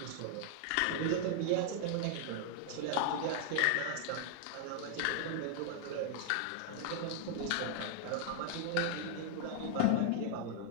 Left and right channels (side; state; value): both; different; correlation 0.00